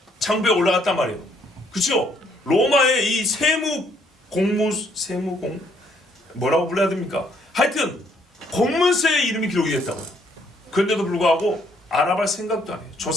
장부에 올라갔단 말이에요. 그렇죠? 로마의 이 뭐라고 불러야 됩니까? 하여튼 공문서에 이름이 기록이 됐다고요. 그런데도 불구하고 알아볼 생각도 안 해요.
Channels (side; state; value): both; normal; correlation 0.67